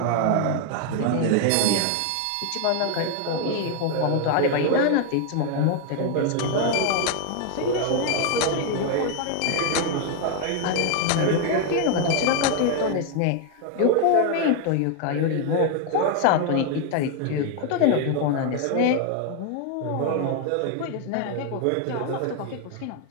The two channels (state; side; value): different; both; correlation 0.00